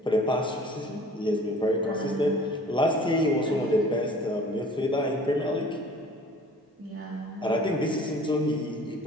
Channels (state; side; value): normal; both; correlation 0.48